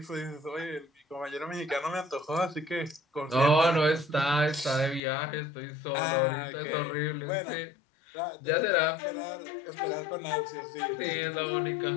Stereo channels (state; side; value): drops out; right; at 5.0 s